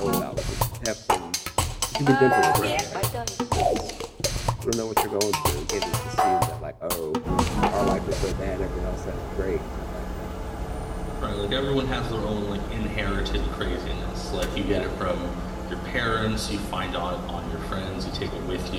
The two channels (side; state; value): both; identical; correlation 1.00